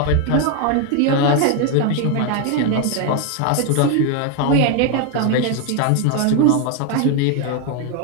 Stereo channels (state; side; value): different; both; correlation 0.01